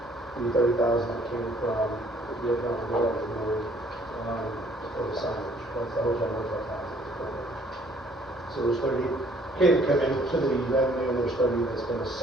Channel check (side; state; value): both; normal; correlation 0.61